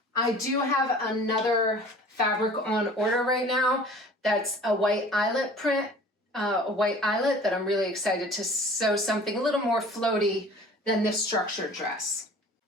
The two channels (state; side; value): normal; both; correlation 0.46